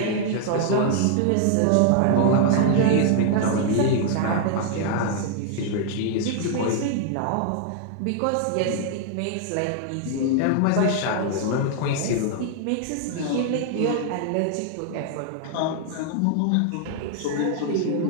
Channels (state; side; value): different; both; correlation 0.00